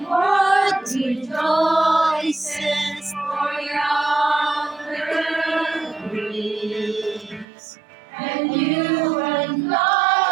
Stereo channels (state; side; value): drops out; left; at 7.5 s